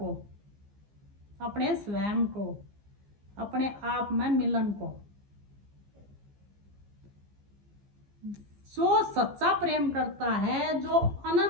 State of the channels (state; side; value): late; left; 15 ms